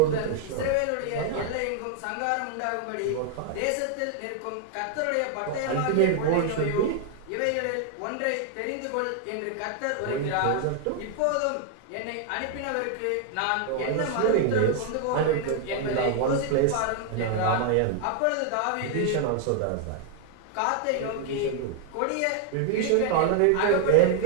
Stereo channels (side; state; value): both; different; correlation 0.00